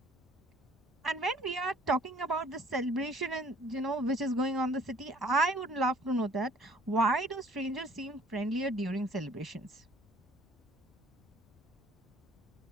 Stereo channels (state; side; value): normal; both; correlation 0.54